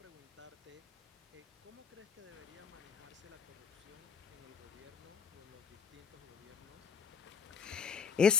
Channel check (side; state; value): right; quieter; 6.5 dB